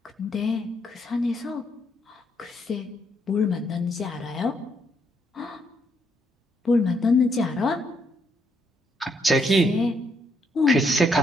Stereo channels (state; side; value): normal; both; correlation 0.75